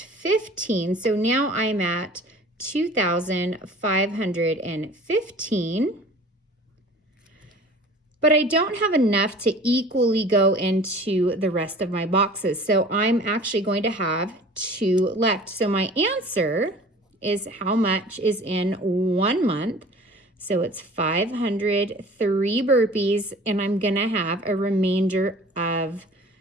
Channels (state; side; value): normal; both; correlation 0.45